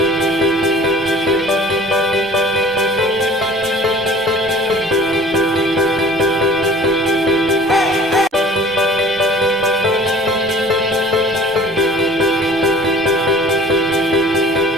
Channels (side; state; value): both; normal; correlation 0.48